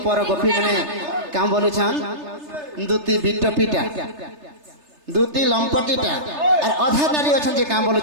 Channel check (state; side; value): late; left; 3.3 ms